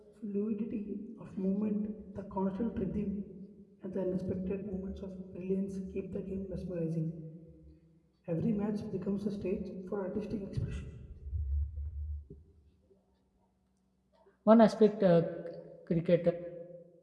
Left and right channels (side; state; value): both; identical; correlation 1.00